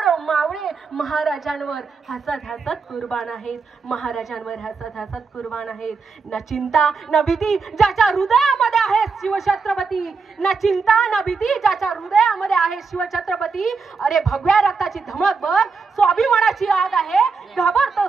मावळे महाराजांवर हसत हसत कुर्बान आहेत, महाराजांवर हसत हसत कुर्बान आहेत. न चिंता न भीती ज्याच्या हृदयामध्ये आहे शिवछत्रपती, न चिंता न भीती ज्याच्या हृदयामध्ये आहे शिवछत्रपती. अरे भगव्या रक्ताची धमक बघ, स्वाभिमानाची आग आहे,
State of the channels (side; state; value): left; quieter; 4.9 dB